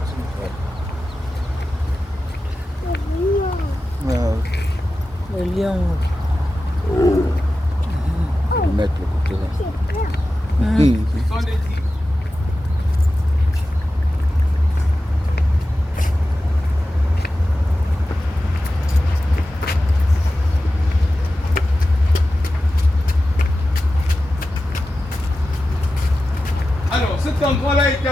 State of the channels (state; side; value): normal; both; correlation 0.93